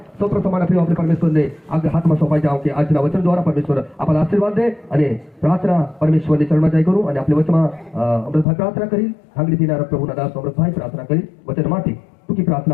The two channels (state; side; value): drops out; right; at 8.5 s